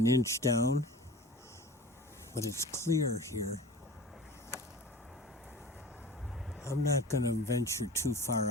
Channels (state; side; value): normal; both; correlation 0.39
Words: inch down, but it's clear here. I'm not going to venture too far